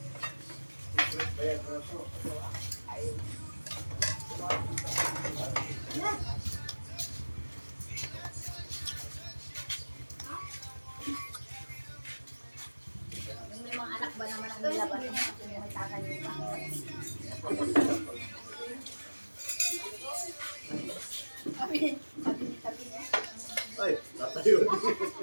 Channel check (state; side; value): inverted; both; correlation -1.00